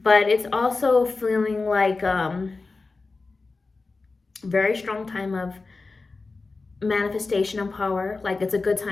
it's also feeling like very strong time of manifestation and power. Like it's a good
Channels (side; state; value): right; quieter; 3.8 dB